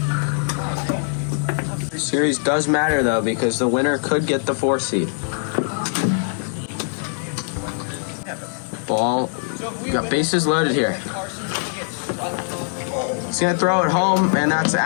Series does matter though, because the winner could get the 4 seed. Ball, got bases loaded here. He's gonna throw it home, and that's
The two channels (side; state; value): right; silent; 64 dB below the other